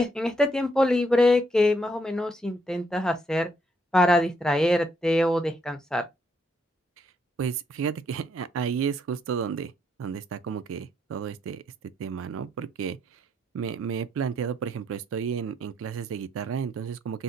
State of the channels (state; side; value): normal; both; correlation 0.73